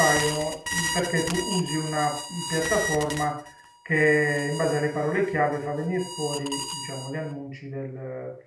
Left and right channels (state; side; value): identical; both; correlation 1.00